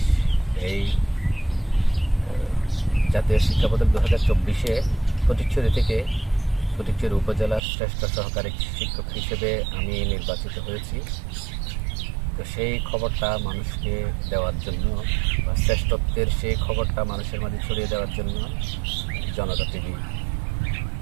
এই জাতীয় শিক্ষা পদক 2024-এ ফটিকছড়ি উপজেলার শ্রেষ্ঠ সহকারী শিক্ষক হিসেবে আমি নির্বাচিত হয়েছি। তো সেই খবরটা মানুষকে দেওয়ার জন্য, বা শ্রেষ্ঠত্বের সেই খবরটা মানুষের মাঝে ছড়িয়ে দেওয়ার জন্য জনতা টিভি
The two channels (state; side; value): drops out; left; at 7.6 s